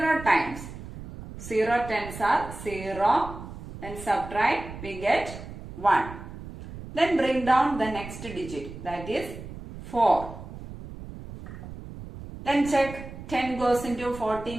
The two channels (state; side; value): noise; right; rumble, 12 dB below the sound